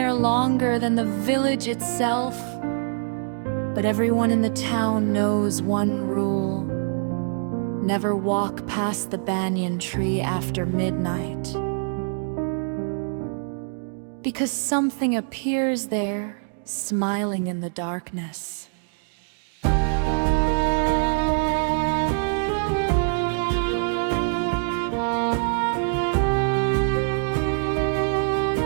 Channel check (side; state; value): left; silent; 62 dB below the other